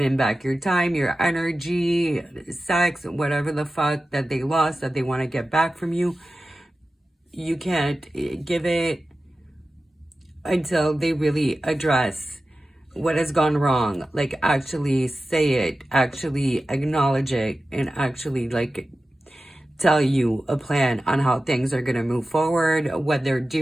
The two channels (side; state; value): both; normal; correlation 0.94